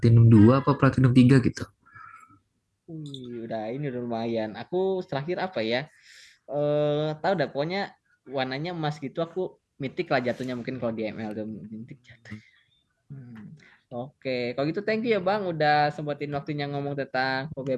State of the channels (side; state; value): both; identical; correlation 1.00